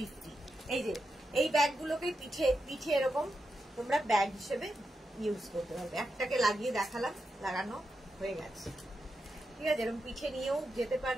এই যে এই ব্যাগগুলোকে পিঠে এরকম তোমরা ব্যাগ হিসেবে ইউজ করতে পারবে। একটাকে লাগিয়ে দেখালাম, লাগানো হয়ে গেছে, ঠিক আছে। এরকম পিঠে নিয়েও যেতে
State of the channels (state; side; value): normal; both; correlation 0.87